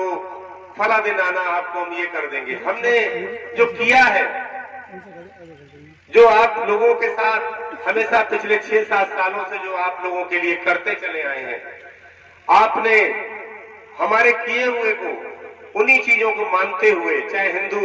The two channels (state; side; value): identical; both; correlation 1.00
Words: फला दिन आना, आपको हम ये कर देंगे। हमने जो किया है, जो आप लोगों के साथ हमेशा पिछले 6-7 सालों से जो आप लोगों के लिए करते चले आए हैं, आपने हमारे किए हुए को, उन्हीं चीजों को मानते हुए, चाहे